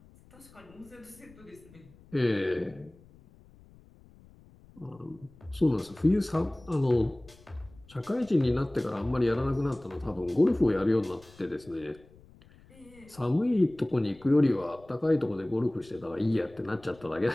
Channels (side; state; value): left; noise; rumble, 25 dB below the sound